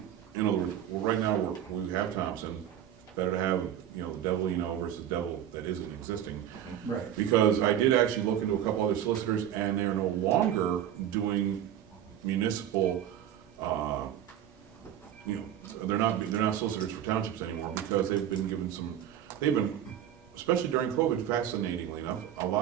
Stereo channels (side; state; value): left; quieter; 10.6 dB